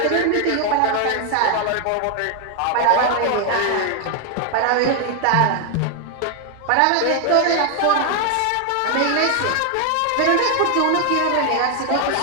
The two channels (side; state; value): both; different; correlation 0.01